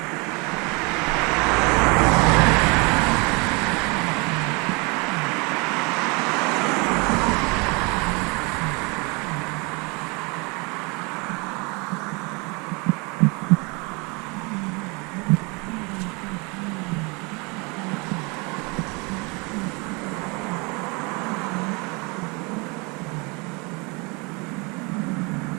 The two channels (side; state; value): left; quieter; 29.2 dB